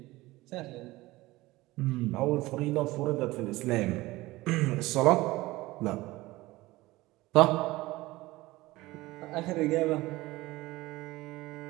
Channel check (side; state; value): left; quieter; 19.3 dB